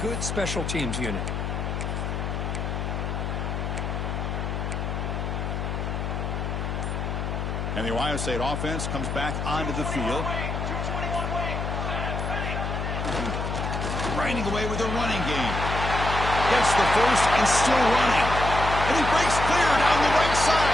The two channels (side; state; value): left; noise; hum, 3 dB below the sound